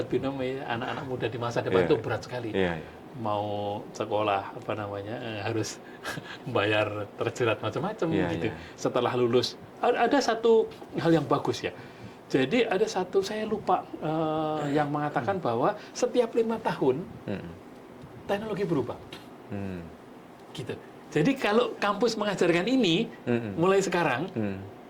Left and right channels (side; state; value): both; identical; correlation 1.00